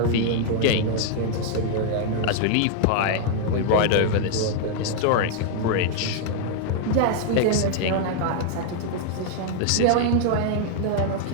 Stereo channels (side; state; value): both; different; correlation 0.00